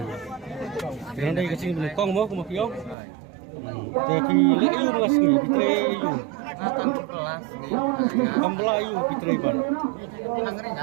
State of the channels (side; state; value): left; drops out; at 3.0 s